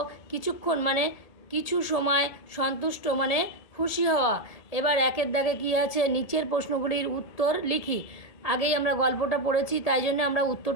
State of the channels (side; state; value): right; late; 1.7 ms